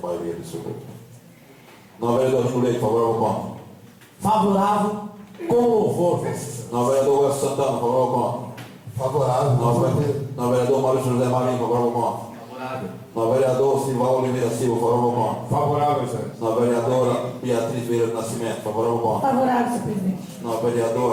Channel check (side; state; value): both; identical; correlation 1.00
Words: absoluta. Não, vereador Júlio Leite, favorável ou contra? Favorável com louvor, Vossa Excelência. Não, vereador Welson Santana, favorável ou contra? Favorável. Não, vereador Maurício José Marinho, favorável ou contra? caráter. No vereador Silva Oliveira Silva, favorável ao ponto. Favorável, excelência. Na vereadora Beatriz Vieira do Nascimento, favorável ao ponto. Favorável, senhor presidente. Na